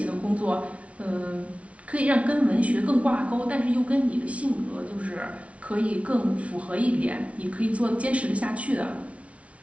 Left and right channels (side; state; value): left; late; 0.064 ms